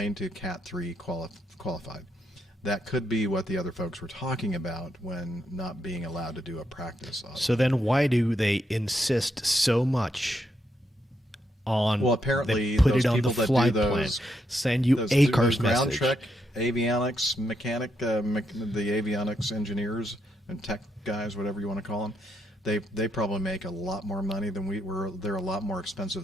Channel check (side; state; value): both; normal; correlation 0.80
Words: to Cat 3 qualified. That could be what the other folks were talking about when not being allowed to do a practice. So then why do they insist so much on apparently put those it on the people that flight do plan, those, send you those ACARS ground message. check, avionics mechanic, the avionics engineers and tech guys, whatever you want to call them, they probably make a lot more money than we were. They're a lot more